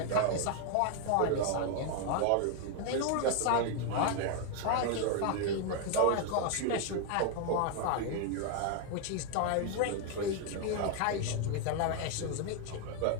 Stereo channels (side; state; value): both; different; correlation 0.00